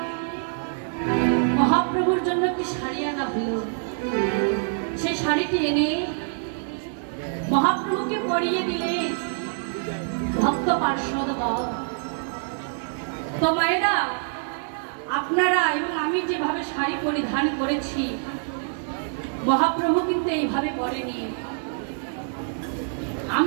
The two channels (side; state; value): left; silent; 61 dB below the other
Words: মহাপ্রভুর জন্য একটি শাড়ি আনা হলো। সেই শাড়িটি এনে মহাপ্রভুকে পরিয়ে দিলে ভক্ত পার্শ্বদগণ। তো মায়েরা, আপনারা এবং আমি যেভাবে শাড়ি পরিধান করেছি, মহাপ্রভু কিন্তু এইভাবে পরেনি।